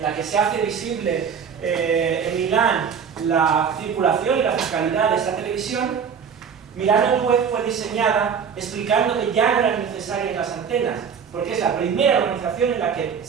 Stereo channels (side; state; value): left; quieter; 6.9 dB